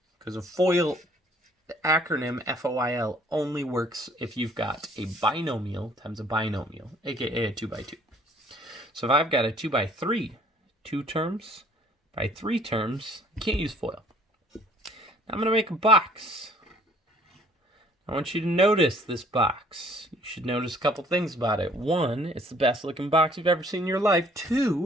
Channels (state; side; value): normal; both; correlation 0.58